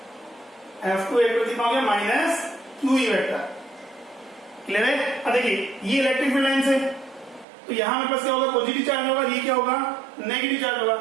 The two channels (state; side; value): drops out; left; at 7.5 s